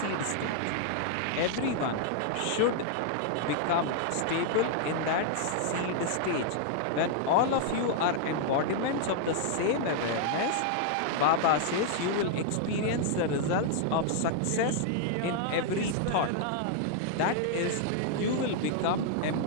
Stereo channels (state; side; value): different; both; correlation -0.01